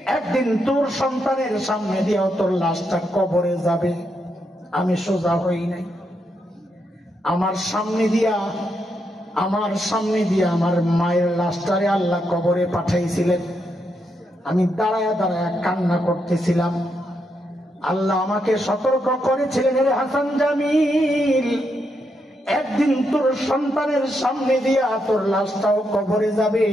একদিন তোর সন্তানের সামনে দিয়েও তোর লাশটা কবরে যাবে। আমি সোজা হই নাই। আমার সামনে দিয়া আমার মায়ের লাশটারে আল্লাহ কবরে পাঠাইছিলেন। আমি দাঁড়ায়া দাঁড়ায়া কান্না করতেছিলাম। আল্লাহ আমাকে সতর্ক করেছিলেন, রে হাসান জামিল, একদিন তোর সন্তানের সামনে দিয়া তোর লাশটাও কবরে যাবে।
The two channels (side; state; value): both; normal; correlation 0.81